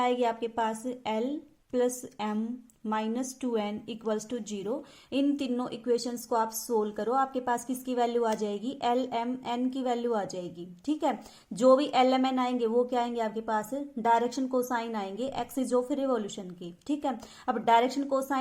आएगी आपके पास, l plus m -2n equals to 0। इन तीनों इक्वेशंस को आप सोल्व करो, आपके पास किसकी वैल्यू आ जाएगी, LMN की वैल्यू आ जाएगी। ठीक है, जो भी LMN आएंगे वो क्या आएंगे आपके पास, डायरेक्शन कोसाइन आएंगे एक्सिस ऑफ रिवॉल्यूशन की। ठीक है, अब डायरेक्शन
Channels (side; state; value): both; identical; correlation 1.00